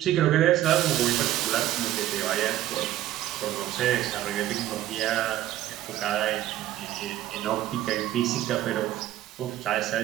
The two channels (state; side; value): quieter; left; 13.5 dB